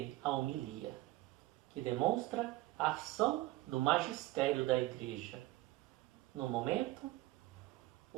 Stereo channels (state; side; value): quieter; left; 18.0 dB